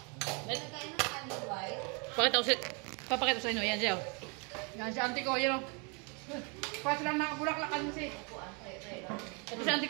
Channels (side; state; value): left; quieter; 33.2 dB